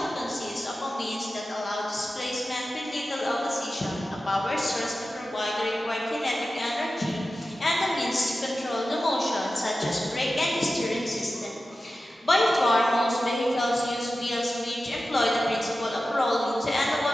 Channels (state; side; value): normal; both; correlation 0.94